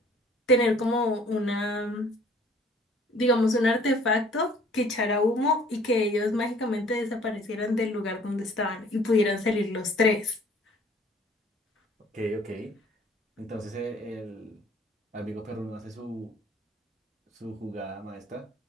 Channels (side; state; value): both; normal; correlation 0.55